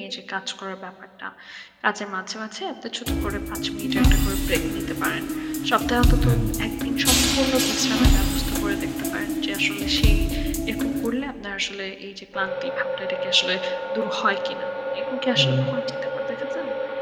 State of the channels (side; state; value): both; identical; correlation 1.00